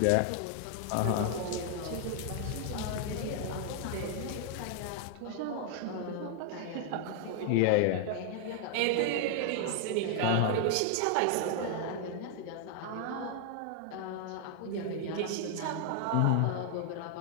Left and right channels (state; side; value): different; both; correlation 0.00